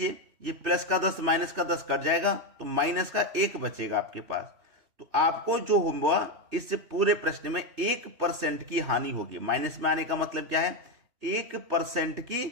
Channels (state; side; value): late; left; 3.2 ms